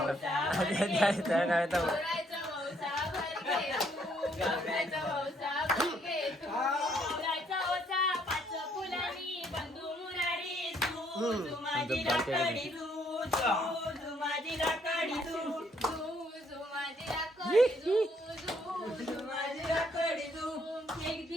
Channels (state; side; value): normal; both; correlation 0.68